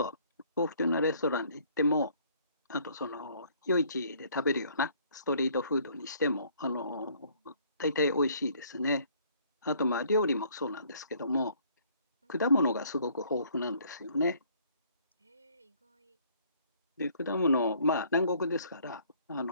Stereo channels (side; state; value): both; inverted; correlation -0.61